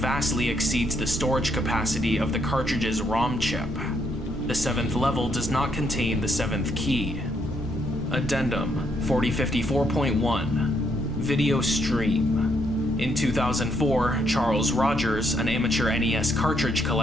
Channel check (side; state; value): both; normal; correlation 0.74